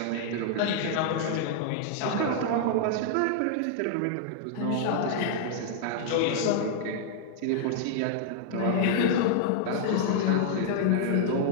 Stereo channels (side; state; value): both; different; correlation -0.01